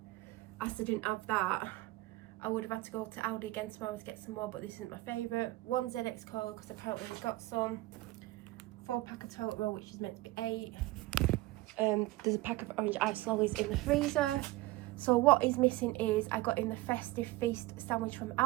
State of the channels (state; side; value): quieter; left; 19.2 dB